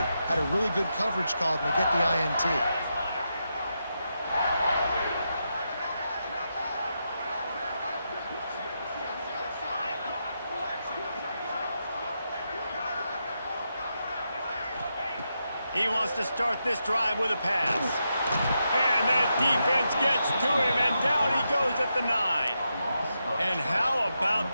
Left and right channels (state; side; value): inverted; both; correlation -0.85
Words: had a really good coverage call, and they get the INT. He wants to start this drive with a pass. And that defense gets to him, and down he goes at the 9. And how about